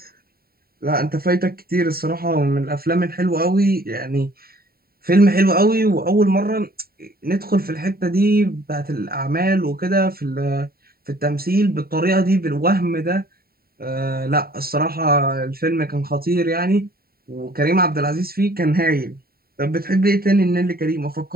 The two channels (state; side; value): late; left; 0.44 ms